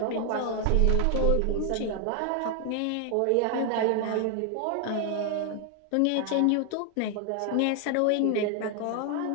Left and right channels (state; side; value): different; both; correlation 0.00